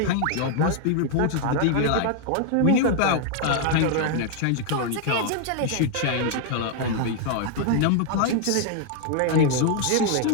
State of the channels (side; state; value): both; different; correlation 0.00